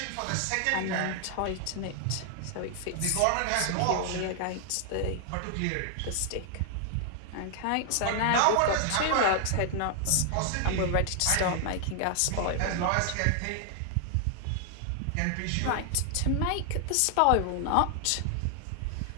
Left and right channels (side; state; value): both; different; correlation 0.00